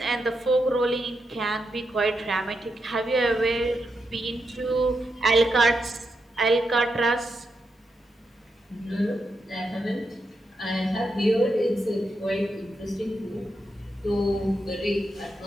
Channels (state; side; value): normal; both; correlation 0.84